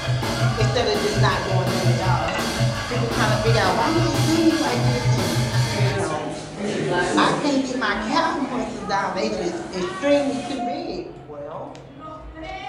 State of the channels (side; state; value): both; identical; correlation 1.00